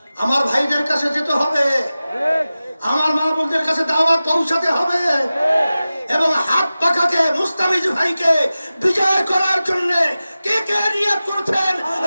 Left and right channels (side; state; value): both; inverted; correlation -0.96